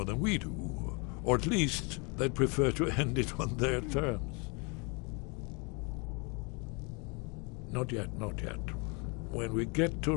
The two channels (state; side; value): quieter; right; 31.6 dB